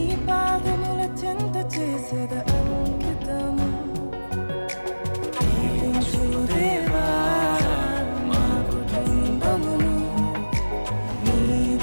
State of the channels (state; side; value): inverted; both; correlation -1.00